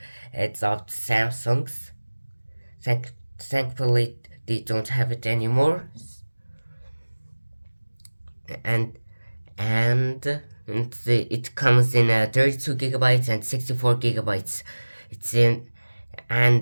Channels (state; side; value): inverted; both; correlation -1.00